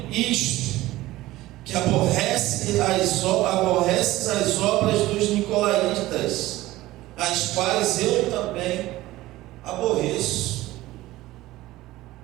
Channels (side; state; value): left; quieter; 17.2 dB